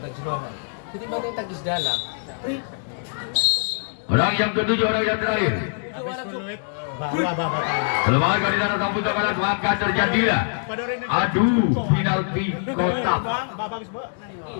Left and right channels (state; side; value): silent; right; digital silence